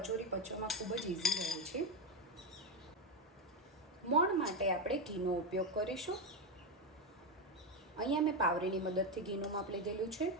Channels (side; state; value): both; normal; correlation 0.10